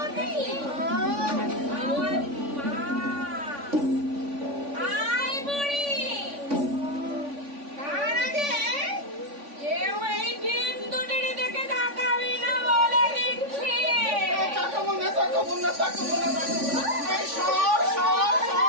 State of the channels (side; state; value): left; late; 3.5 ms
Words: আমার মা। আয় বুড়ি, তার আগে কেউ এই ডিম দুটির দিকে তাকাবি না বলে দিচ্ছি। তাকাবো না, তাকাবো না, তাকাবো না, তাকাবো না। এই সর, সর,